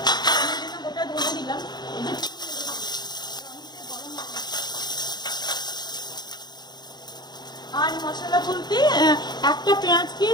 আমি জন্য গোটা ধনে দিলাম। আর মশলা বলতে একটা পেঁয়াজকে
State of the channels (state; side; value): late; right; 0.20 ms